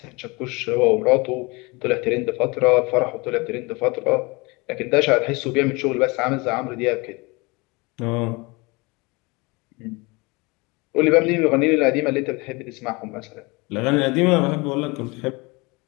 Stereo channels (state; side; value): quieter; right; 26.1 dB